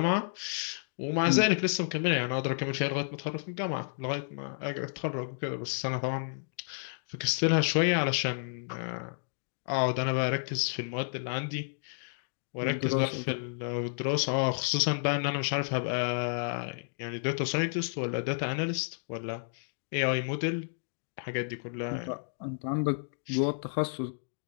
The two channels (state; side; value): silent; right; digital silence